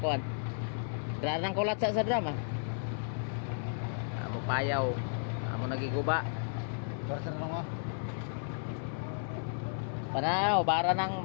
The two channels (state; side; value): silent; right; 55 dB below the other